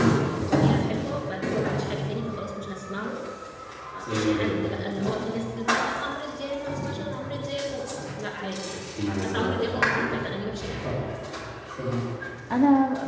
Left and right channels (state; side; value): identical; both; correlation 1.00